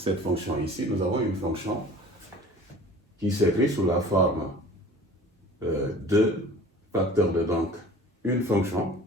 fonction ici, nous avons une fonction qui s'écrit sous la forme de facteur de donc une fonction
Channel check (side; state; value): both; normal; correlation 0.44